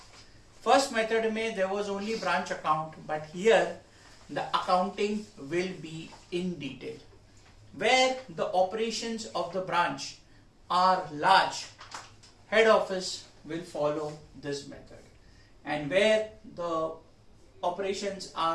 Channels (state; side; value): identical; both; correlation 1.00